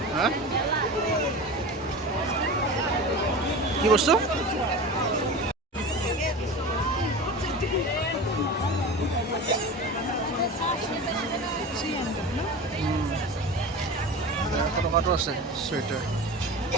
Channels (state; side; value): normal; both; correlation 0.31